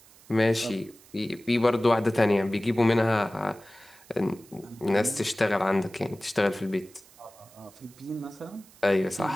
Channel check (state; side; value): noise; right; hiss, 25 dB below the sound